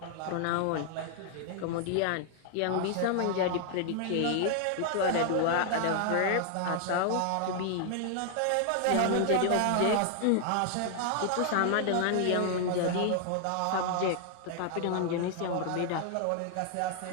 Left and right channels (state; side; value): different; both; correlation 0.00